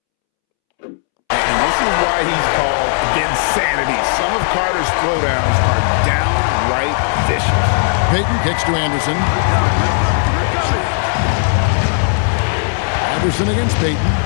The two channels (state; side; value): silent; right; 69 dB below the other